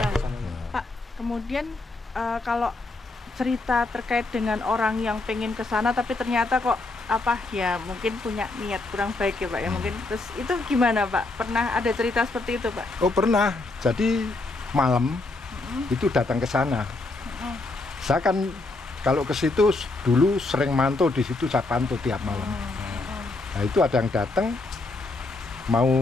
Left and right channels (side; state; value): right; quieter; 3.2 dB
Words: ke sana. Pak, kemudian kalau cerita terkait dengan orang yang pengen ke sana tapi ternyata kok mungkin punya niat kurang baik ya Pak ya, mungkin terus itu gimana Pak? Pernah ada cerita seperti itu Pak? Oh pernah. Jadi malam itu datang ke sana. Saya kan kalau ke situ dulu sering mantau di situ, saya pantau tiap malam. Nah itu ada yang datang mau